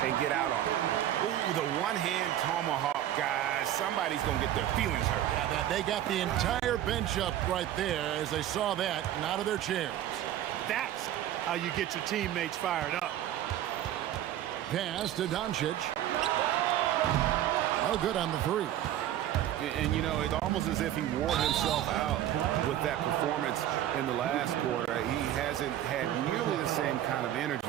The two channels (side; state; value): left; quieter; 12.1 dB